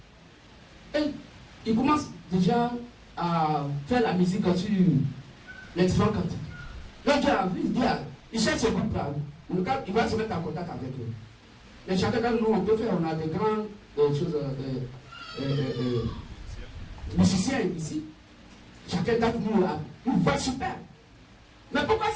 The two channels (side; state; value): both; identical; correlation 1.00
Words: Et ils commencent déjà à faire la musique sur les différents cantiques. Donc il cherche ce groupe-là. Il va se mettre en contact avec eux. Mais chacun d'entre nous, on peut faire, on a des grandes choses, musiciens ici. Chacun d'entre nous a une voix super. Mais pourquoi